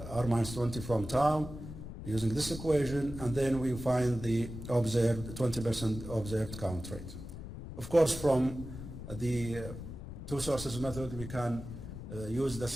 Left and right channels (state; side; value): noise; left; rumble, 10 dB below the sound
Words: minus 20 from tau, using this equation, and then we find the observed 20% observed count rate. Of course, from the two sources method, we can use the